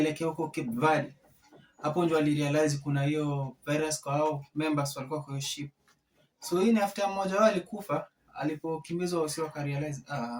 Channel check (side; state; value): both; identical; correlation 1.00